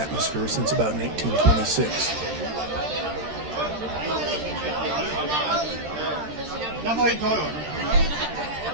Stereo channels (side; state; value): left; late; 13 ms